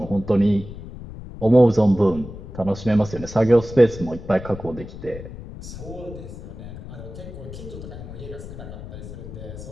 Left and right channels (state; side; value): noise; left; rumble, 12 dB below the sound